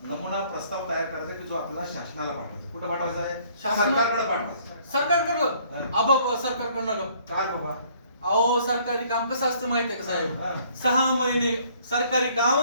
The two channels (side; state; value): both; inverted; correlation -0.61